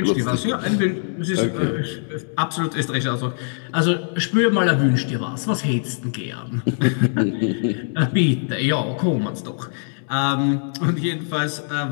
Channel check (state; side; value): silent; right; 64 dB below the other